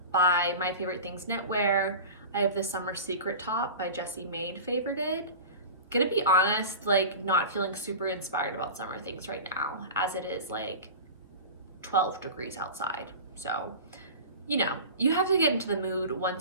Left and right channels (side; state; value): both; inverted; correlation -0.34